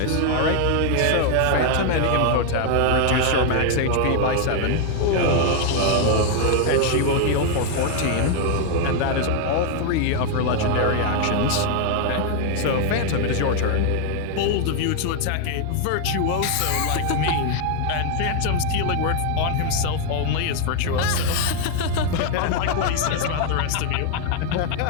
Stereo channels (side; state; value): both; different; correlation 0.00